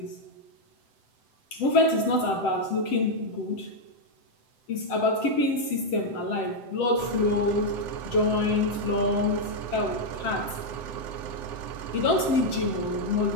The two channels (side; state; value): right; late; 7.8 ms